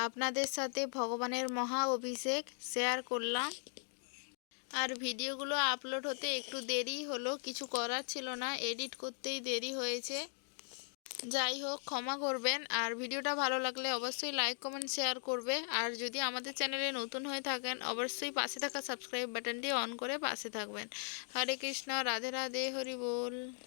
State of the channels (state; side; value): silent; right; 52 dB below the other